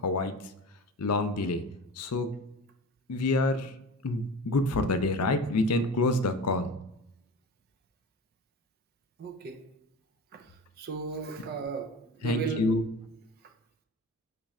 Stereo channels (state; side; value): normal; both; correlation 0.33